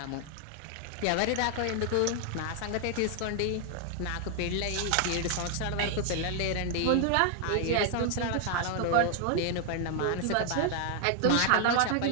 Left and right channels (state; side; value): different; both; correlation 0.00